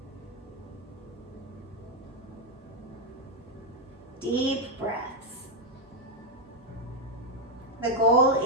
Deep breaths. The goal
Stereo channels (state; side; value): normal; both; correlation 0.00